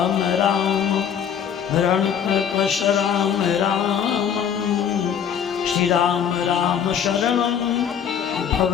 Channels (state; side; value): quieter; right; 8.2 dB